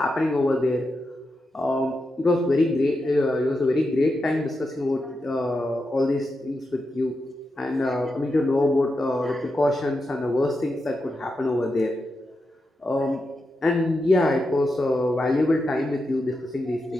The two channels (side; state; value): both; normal; correlation 0.87